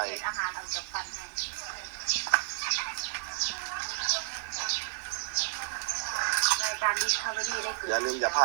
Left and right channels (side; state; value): left; silent; 57 dB below the other